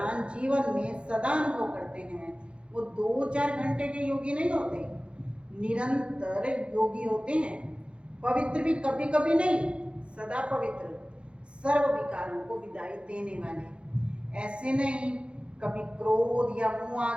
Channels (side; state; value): left; late; 0.058 ms